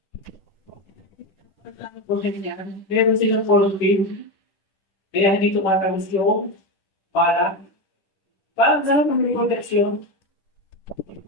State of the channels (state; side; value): late; right; 10 ms